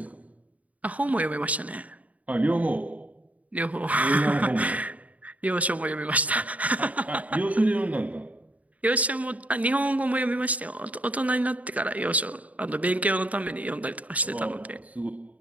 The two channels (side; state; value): left; late; 0.070 ms